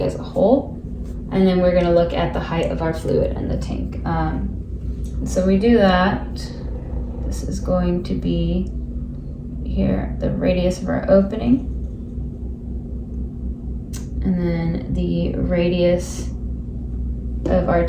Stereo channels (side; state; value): both; identical; correlation 1.00